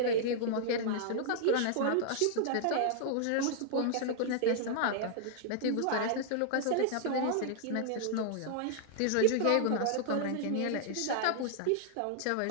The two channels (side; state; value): both; different; correlation -0.01